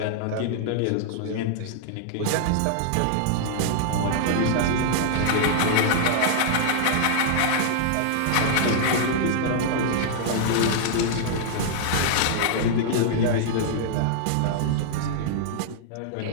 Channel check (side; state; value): both; different; correlation -0.01